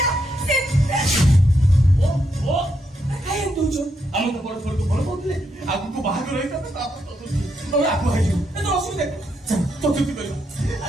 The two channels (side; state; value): both; normal; correlation 0.79